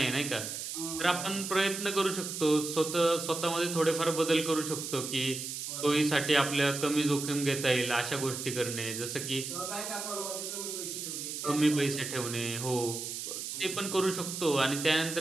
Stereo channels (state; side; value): noise; right; hiss, 6 dB below the sound